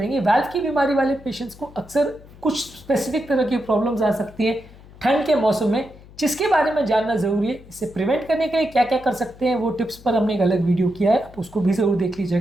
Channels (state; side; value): noise; left; hum, 21 dB below the sound